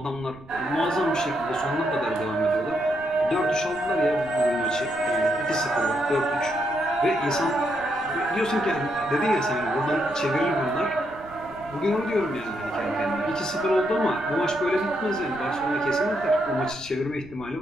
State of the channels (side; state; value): right; noise; rumble, 21 dB below the sound